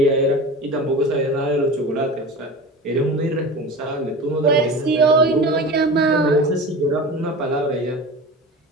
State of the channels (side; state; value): both; normal; correlation 0.33